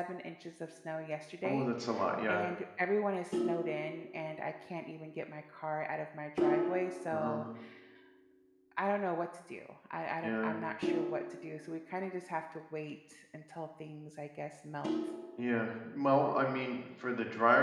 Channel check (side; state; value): both; identical; correlation 1.00